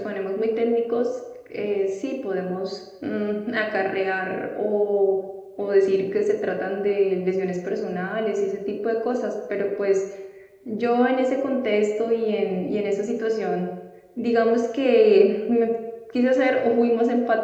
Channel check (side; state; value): both; identical; correlation 1.00